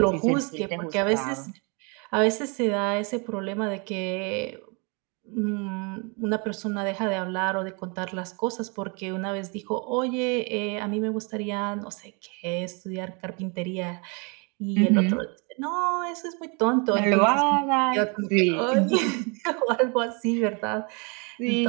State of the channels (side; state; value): left; quieter; 32.9 dB